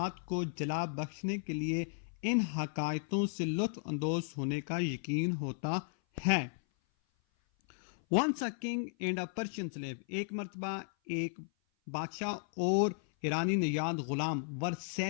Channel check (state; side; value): silent; right; 54 dB below the other